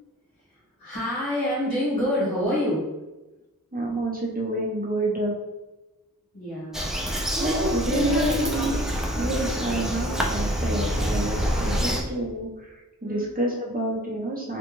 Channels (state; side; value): normal; both; correlation 0.50